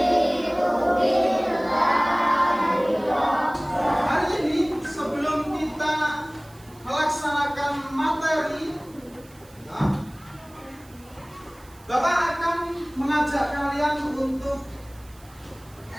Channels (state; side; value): noise; right; hiss, 26 dB below the sound